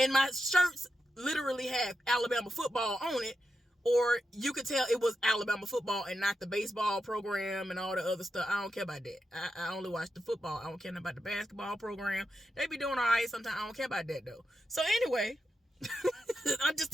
my shirts literally have Alabama football on it, or you could tell it was Alabama football and not the baseball program and all the other stuff. I don't care about that. I only watch the football. I don't care about the basketball program. They be doing all right sometimes. I don't care about that, though. So anyway, I'm just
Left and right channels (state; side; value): normal; both; correlation 0.87